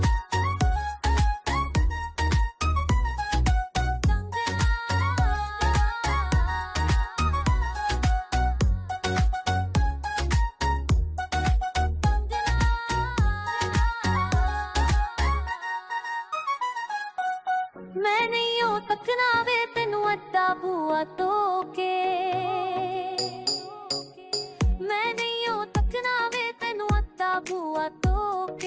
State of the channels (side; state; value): both; identical; correlation 1.00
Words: मैं नहीं हो तकना वे तेनू अद्धा बुआ तो के मैं नहीं हो तकना वे तेनू अद्धा बुआ तो